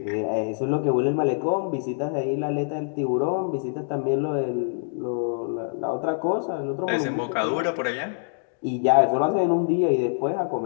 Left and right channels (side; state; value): right; silent; digital silence